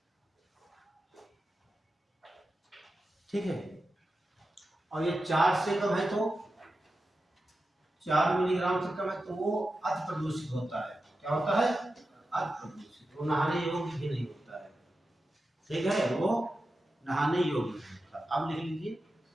ठीक है, और ये 4 से कम है तो 4 मिलीग्राम से कम है तो वो अति प्रदूषित होता है। क्या होता है? अति प्रदूषित, वो नहाने योग्य भी नहीं होता है, ठीक है, वो नहाने योग्य नहीं होता। अब लिख लीजिए,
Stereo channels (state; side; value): normal; both; correlation 0.91